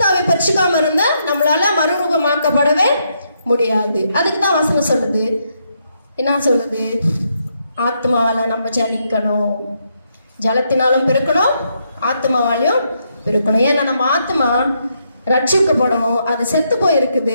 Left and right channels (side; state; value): both; inverted; correlation -0.77